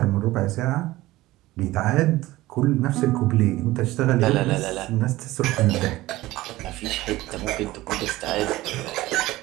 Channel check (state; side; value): quieter; left; 17.7 dB